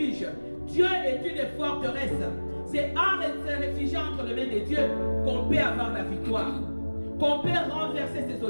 Dieu est une forteresse. C'est en se réfugiant entre les mains de Dieu qu'on peut avoir la victoire, qu'on peut renverser ses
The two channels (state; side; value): inverted; both; correlation -1.00